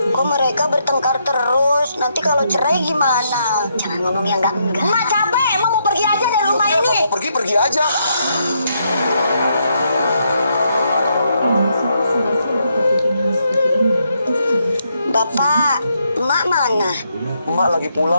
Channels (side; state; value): both; inverted; correlation -0.77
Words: Kok mereka bertengkar terus? Nanti kalau cerai gimana? Jangan ngomong yang enggak. Emak capek, Emak mau pergi aja dari rumah ini. Pergi aja. Bapak, Emak mana? Emak lagi